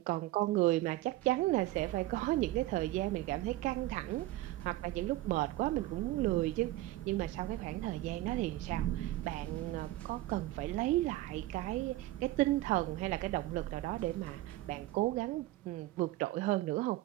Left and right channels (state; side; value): quieter; left; 16.6 dB